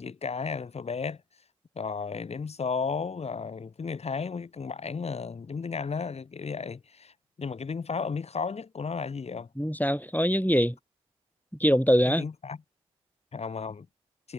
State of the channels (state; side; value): normal; both; correlation 0.75